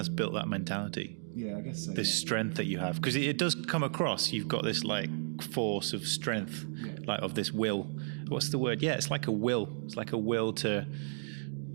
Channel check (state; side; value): silent; left; digital silence